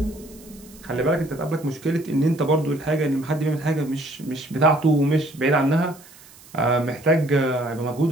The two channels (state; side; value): noise; right; hiss, 23 dB below the sound